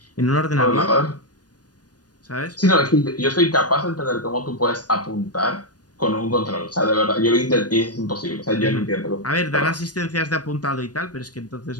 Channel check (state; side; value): late; right; 0.69 ms